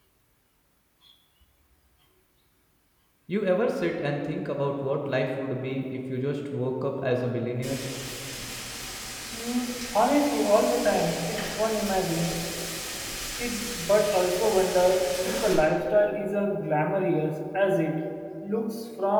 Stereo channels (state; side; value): identical; both; correlation 1.00